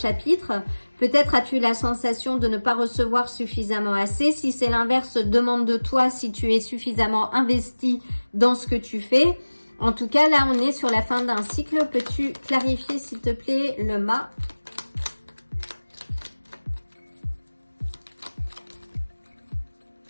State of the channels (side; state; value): both; inverted; correlation -1.00